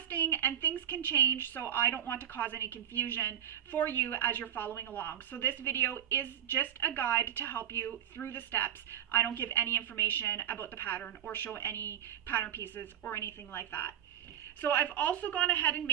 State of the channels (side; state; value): left; quieter; 10.2 dB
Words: and things can change, so I don't want to cause any confusion for you as you're following along. So this video is just a guide to help you through the steps. I don't give any information about the pattern or show any pattern pieces or anything like that. So I've also gone ahead and